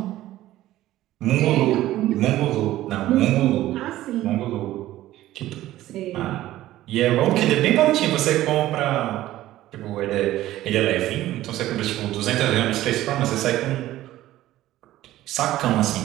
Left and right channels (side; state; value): left; quieter; 14.9 dB